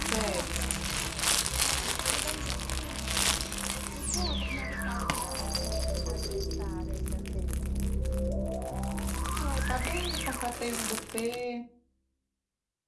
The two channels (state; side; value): identical; both; correlation 1.00